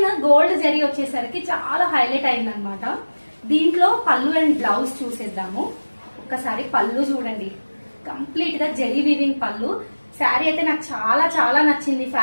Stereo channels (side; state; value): both; inverted; correlation -1.00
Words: గోల్డ్ జరీ వచ్చేసరికి చాలా హైలైట్ అయిందనమాట. దీంట్లో పళ్ళు అండ్ బ్లౌజ్ చూసేద్దాము. ఒక్కసారి పళ్ళు చూడండి, కంప్లీట్ గా జరీ వీవింగ్ పళ్ళు. శారీ అయితే నాకు చాలా నచ్చింది,